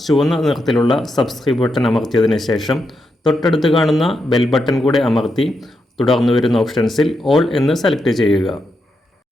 ചുവന്ന നിറത്തിലുള്ള സബ്സ്ക്രൈബ് ബട്ടൺ അമർത്തിയതിനു ശേഷം തൊട്ടടുത്ത് കാണുന്ന ബെൽ ബട്ടൺ കൂടെ അമർത്തി തുടർന്ന് വരുന്ന ഓപ്ഷൻസിൽ ഓൾ എന്ന് സെലക്ട് ചെയ്യുക.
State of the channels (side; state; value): both; normal; correlation 0.84